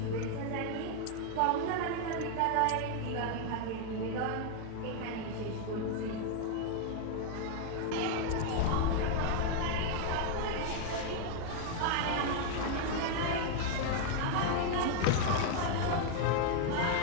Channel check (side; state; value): both; different; correlation 0.00